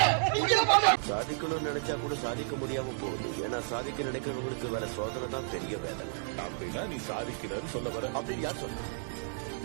சாதிக்கணும்னு நினைச்சா கூட சாதிக்க முடியாம போகுது. ஏன்னா சாதிக்க நினைக்கிறவங்களுக்கு வேற சோதனை தான் பெரிய வேதனை. அப்படின்னா நீ சாதிக்கிறன்னு சொல்ல வர அப்படின்னு யார் சொல்ற?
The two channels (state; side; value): silent; left; digital silence